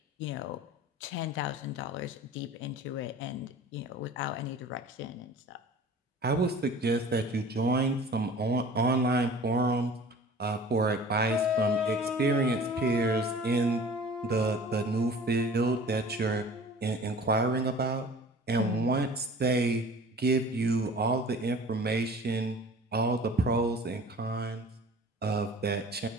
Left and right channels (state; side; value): normal; both; correlation 0.43